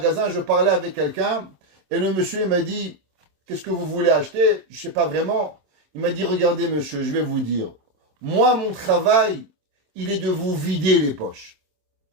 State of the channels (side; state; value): left; late; 27 ms